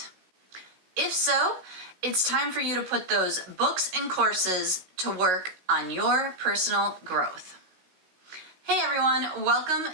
If so, it's time for you to put those books and courses to work on your personal growth. Hey everyone,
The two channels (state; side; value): late; left; 16 ms